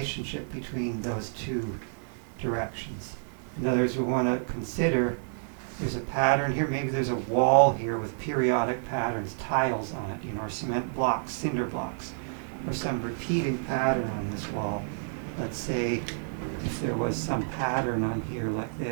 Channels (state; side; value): silent; left; 58 dB below the other